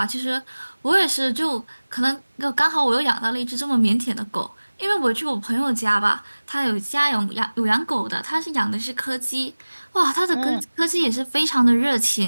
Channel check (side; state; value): both; inverted; correlation -1.00